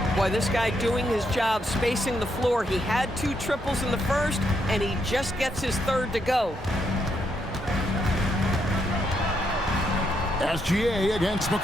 Boy, this guy doing his job spacing the floor. He had 2 triples in the first, and he just gets his third to go. SGA against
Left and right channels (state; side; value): normal; both; correlation 0.78